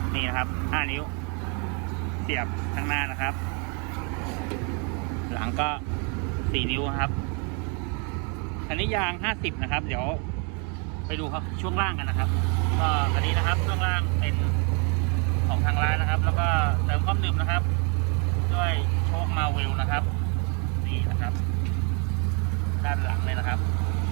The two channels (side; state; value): left; quieter; 35.4 dB